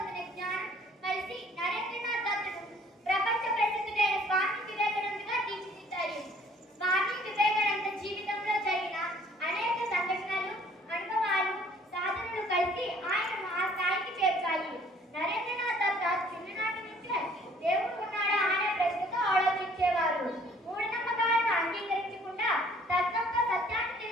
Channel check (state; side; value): normal; both; correlation 0.58